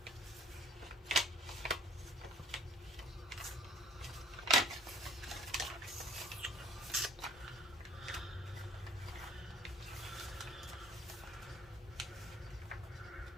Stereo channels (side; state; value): both; normal; correlation 0.53